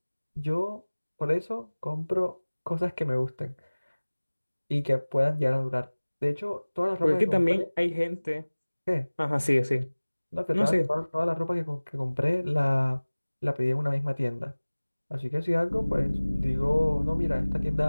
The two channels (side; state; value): both; inverted; correlation -1.00